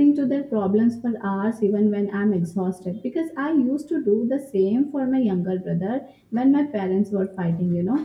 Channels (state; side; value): identical; both; correlation 1.00